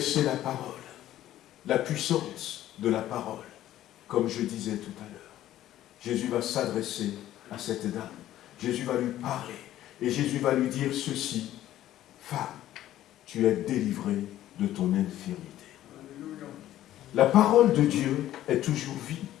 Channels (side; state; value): right; quieter; 13.3 dB